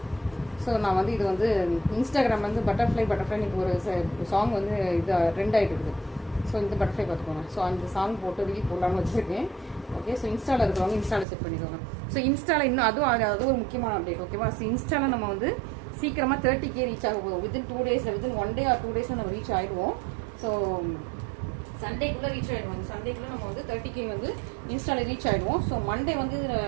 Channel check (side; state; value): left; drops out; at 11.2 s